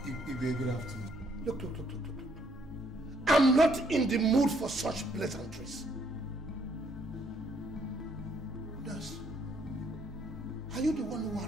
Good afternoon. Look. I'm not in the mood for such pleasantries. Nurse, are you the one who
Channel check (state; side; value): normal; both; correlation 0.68